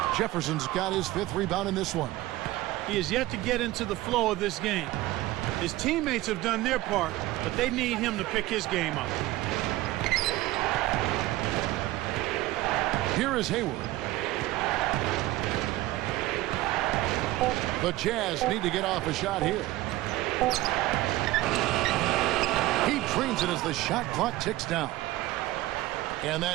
Jefferson's got his 5th rebound in this one. He is yet to get into the flow of this game. His teammates have done their part, but they need him to pick his game up. Here is Hayward. The Jazz need to get off a shot here. He drains it as the shot clock ticks down. And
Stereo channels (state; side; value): quieter; left; 17.4 dB